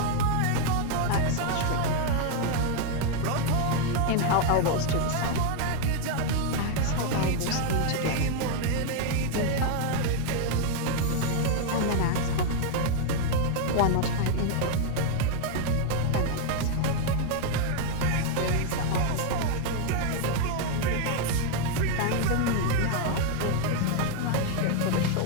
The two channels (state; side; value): different; both; correlation 0.01